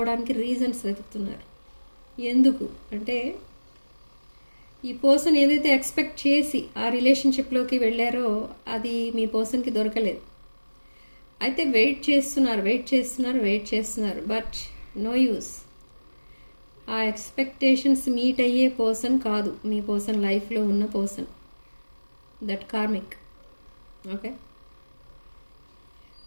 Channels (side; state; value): both; inverted; correlation -1.00